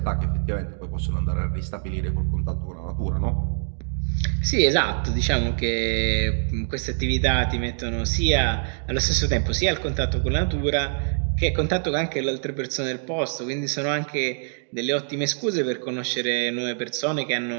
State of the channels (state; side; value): silent; left; digital silence